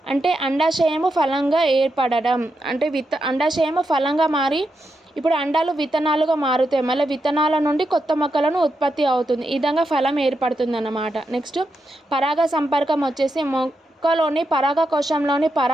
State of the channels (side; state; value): both; normal; correlation 0.85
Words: అంటే అండాశయము ఫలంగా ఏర్పడడం అంటే అండాశయము ఫలంగా మారి ఇప్పుడు అండాలు విత్తనాలుగా మారుతాయి. మళ్ళీ విత్తనాల నుండి కొత్త మొక్కలను ఉత్పత్తి అవుతుంది. ఈ విధంగా ఫలం ఏర్పడుతుంది అన్నమాట. నెక్స్ట్ పరాగ సంపర్కం వచ్చేసి మొక్కలోని పరాగకోశంలోని